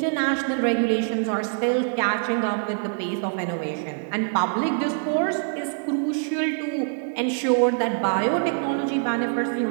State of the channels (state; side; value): silent; left; digital silence